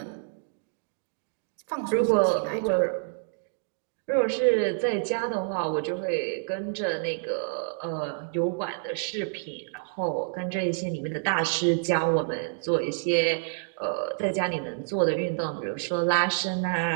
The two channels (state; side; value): silent; left; digital silence